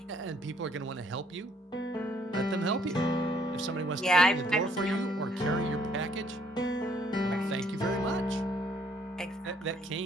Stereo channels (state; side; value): normal; both; correlation 0.65